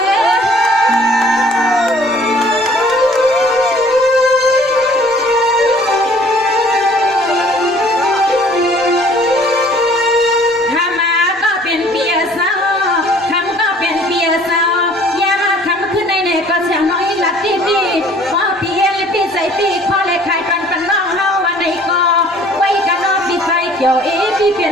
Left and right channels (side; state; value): both; normal; correlation 0.54